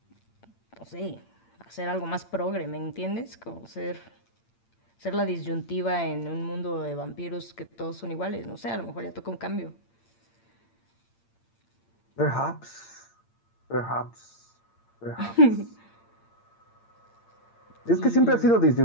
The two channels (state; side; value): late; right; 8.8 ms